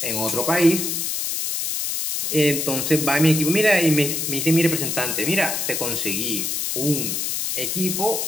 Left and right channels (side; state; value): left; noise; hiss, 1 dB below the sound